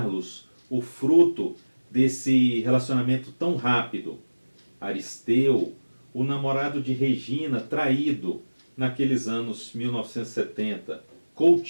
o fruto desse relacionamento tão rápido. Aristeu, o namorado de Regina, traído naqueles anos 1970.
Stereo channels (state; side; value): inverted; both; correlation -1.00